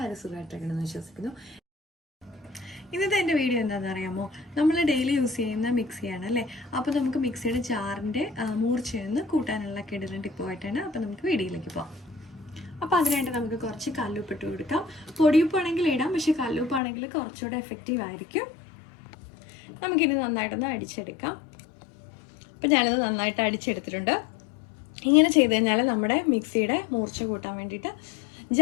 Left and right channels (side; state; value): right; drops out; at 16.8 s